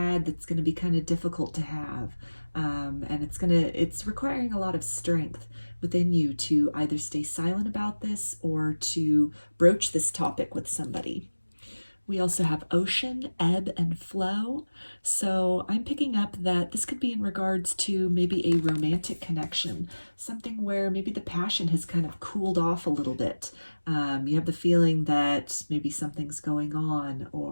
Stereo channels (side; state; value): both; inverted; correlation -1.00